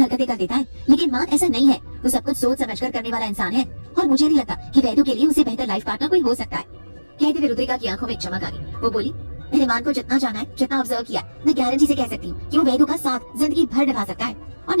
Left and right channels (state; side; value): inverted; both; correlation -1.00